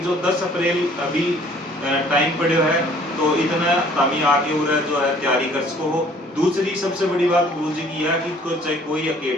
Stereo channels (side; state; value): both; normal; correlation 0.56